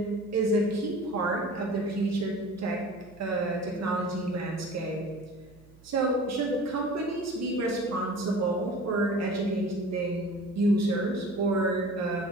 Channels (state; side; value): noise; right; hum, 24 dB below the sound